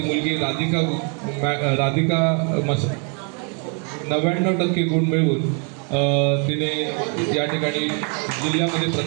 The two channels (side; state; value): left; quieter; 38.0 dB